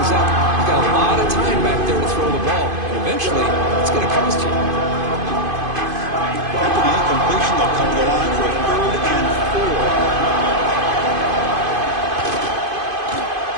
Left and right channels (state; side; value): late; left; 2.5 ms